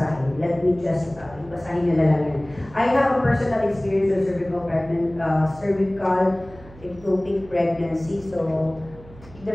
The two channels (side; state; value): right; noise; hum, 20 dB below the sound